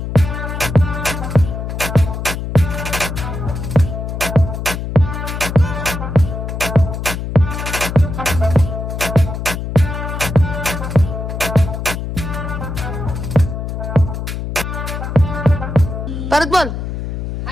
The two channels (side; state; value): left; noise; hum, 5 dB below the sound